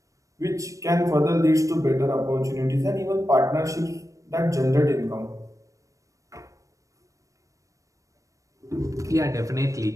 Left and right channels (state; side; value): late; left; 0.16 ms